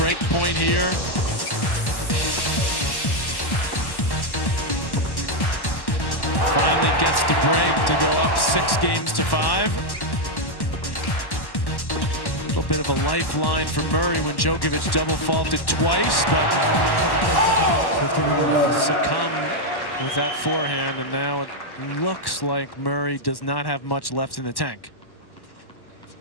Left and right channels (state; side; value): late; right; 1.1 ms